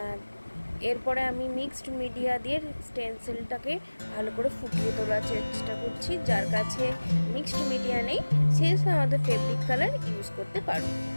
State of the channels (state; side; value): inverted; both; correlation -1.00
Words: এরপরে আমি মিক্সড মিডিয়া দিয়ে স্টেন্সিলটাকে ভালো করে ফুটিয়ে তোলার চেষ্টা করছি। যার কাছে মিক্সড মিডিয়া নেই, সে আমাদের ফেব্রিক কালার ইউজ করতে পারো।